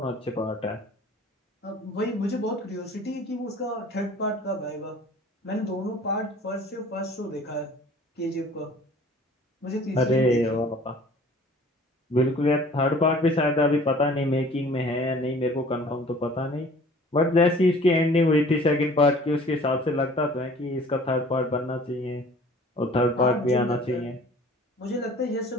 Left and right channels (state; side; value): normal; both; correlation 0.49